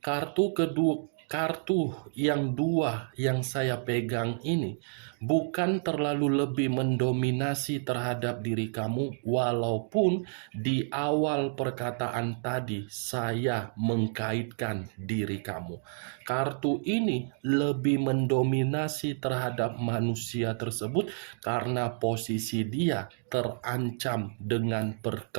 yang dua yang saya pegang ini bukan terlalu lebih mendominasi terhadap diri kamu, walaupun di awal perkataan tadi saya mengkaitkan diri kamu. Kartu ini lebih mendominasi terhadap manusia tersebut karena posisi dia terancam dengan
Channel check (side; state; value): left; silent; digital silence